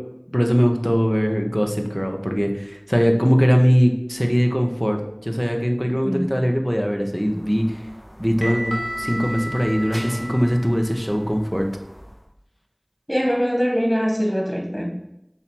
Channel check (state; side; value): identical; both; correlation 1.00